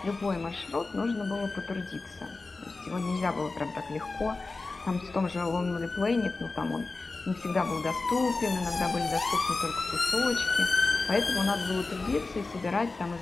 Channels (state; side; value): quieter; right; 3.6 dB